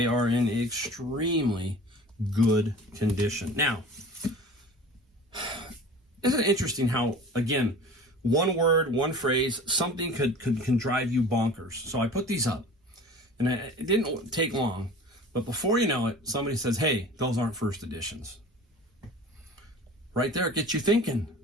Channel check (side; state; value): both; normal; correlation 0.41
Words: are in extremely good condition. Now, isn't it interesting how, again, one word, one phrase, something can drive you bonkers. So I put these up, and it didn't take long, but before you know it, somebody says, hey, those aren't first editions. Right there, it gets you thinking.